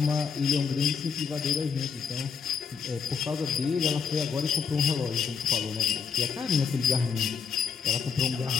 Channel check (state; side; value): quieter; right; 6.2 dB